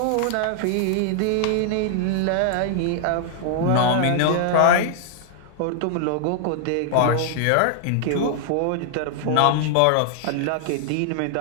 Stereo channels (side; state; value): both; different; correlation -0.01